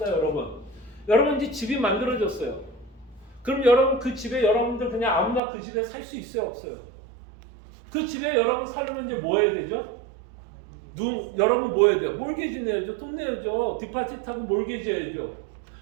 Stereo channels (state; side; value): drops out; left; at 5.4 s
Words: 여러분. 여러분 이제 집이 만들어졌어요. 그럼 여러분 그 집에 여러분들 그냥 아무나 그 집에 살 수 있어요, 없어요? 그 집에 여러분 살려면 이제 뭐 해야 되죠? 여러분 뭐 해야 돼요? 몰개지 내야죠. 돈 내야죠. 디파짓하고 몰개지 해야죠.